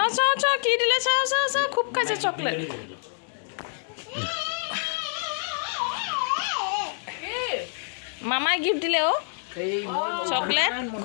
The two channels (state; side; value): silent; right; digital silence